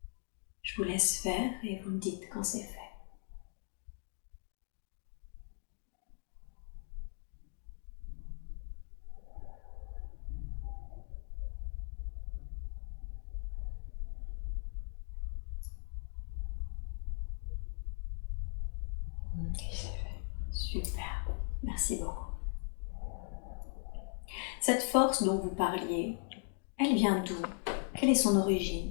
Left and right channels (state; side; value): silent; right; 52 dB below the other